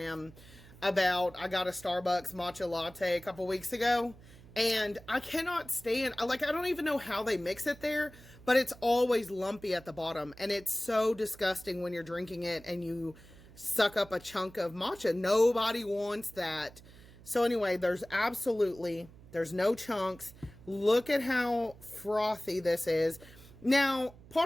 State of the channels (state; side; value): noise; right; hum, 21 dB below the sound